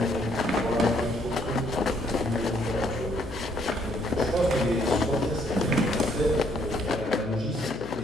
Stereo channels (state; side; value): noise; left; hum, 12 dB below the sound